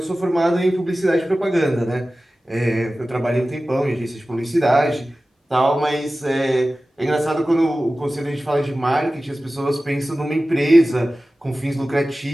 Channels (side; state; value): both; normal; correlation 0.96